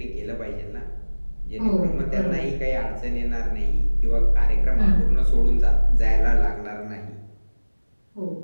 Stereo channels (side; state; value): both; inverted; correlation -1.00